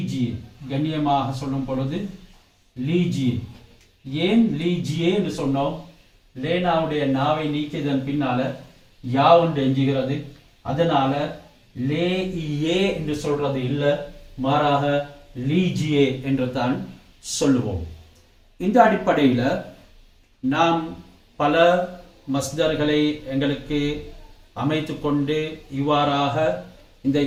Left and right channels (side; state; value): both; identical; correlation 1.00